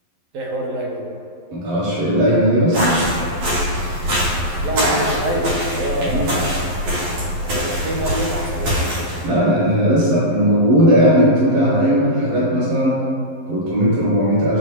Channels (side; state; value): left; late; 11 ms